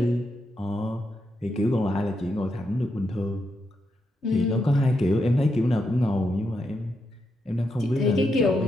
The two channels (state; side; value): normal; both; correlation 0.82